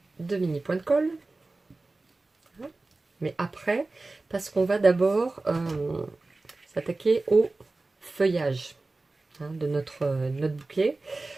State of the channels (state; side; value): quieter; left; 3.3 dB